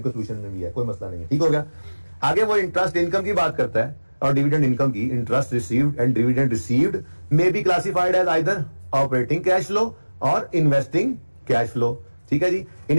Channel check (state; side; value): inverted; both; correlation -1.00